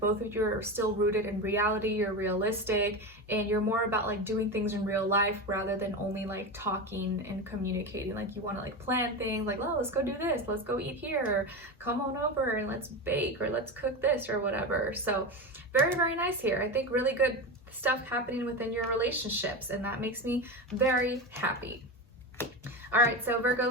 of you are still rooted in reality, you're realistic, and you're more about like doing things in real life rather than only like talking and communicating. Like you want to like plan things like, oh, let's go do this, let's go eat here, or come on over and let's bake, or let's cook this, or whatever. So very, very nice here. I think really good stuff happening within your relationships, and that makes me very happy. All right, so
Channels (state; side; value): normal; both; correlation 0.20